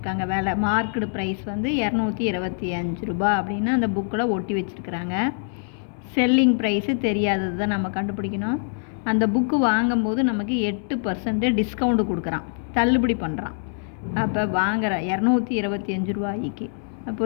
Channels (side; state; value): right; silent; digital silence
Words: வேலை மார்க்கடு ப்ரைஸ் வந்து 225 ரூபா அப்படின்னு அந்த புக்கில் ஒட்டி வச்சுருக்குறாங்க. செல்லிங் ப்ரைஸு தெரியாதது தான் நம்ம கண்டுபிடிக்கணும். அந்த புக்கு வாங்கும்போது நமக்கு 8% டிஸ்கவுண்ட் கொடுக்குறான், தள்ளுபடி பண்ணுறான். அப்போ வாங்குகிற 225 ரூபாய்க்கு